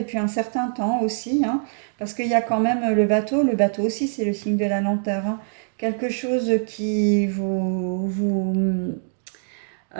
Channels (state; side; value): silent; left; digital silence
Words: un certain temps aussi, hein, parce qu'il y a quand même le bateau aussi c'est le signe de la lenteur, hein, quelque chose qui vous